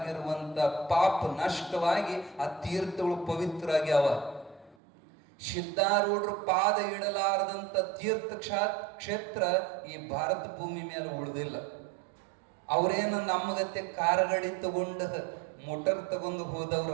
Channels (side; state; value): left; drops out; at 4.8 s